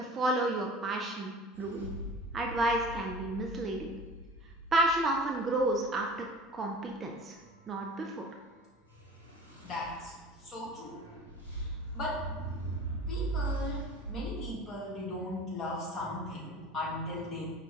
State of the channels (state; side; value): normal; both; correlation 0.40